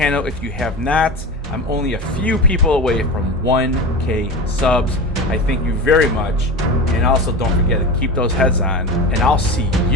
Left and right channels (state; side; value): normal; both; correlation 0.26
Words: if you have not. I'm only a few people away from 1K subs. I thank you very much. And also don't forget to keep those heads on, and I'll see